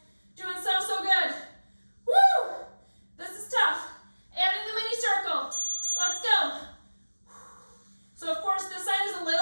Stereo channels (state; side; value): inverted; both; correlation -1.00